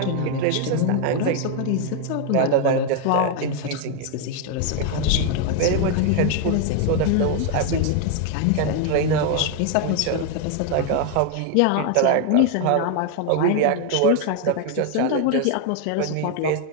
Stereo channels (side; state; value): both; different; correlation 0.01